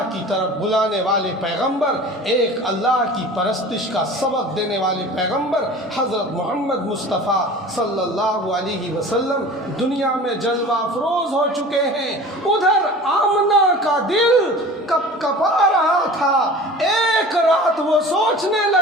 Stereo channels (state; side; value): normal; both; correlation 0.40